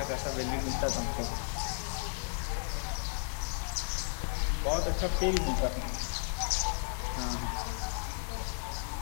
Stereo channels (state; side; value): silent; right; digital silence